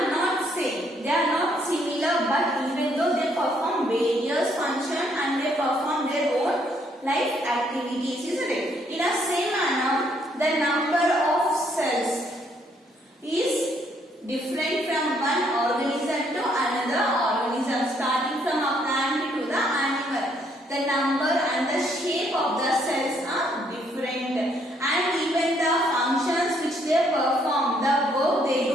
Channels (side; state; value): both; normal; correlation 0.69